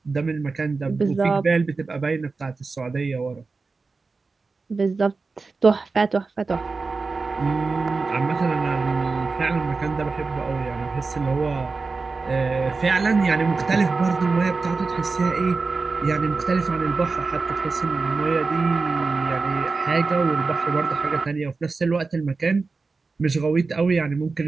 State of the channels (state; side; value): quieter; left; 4.1 dB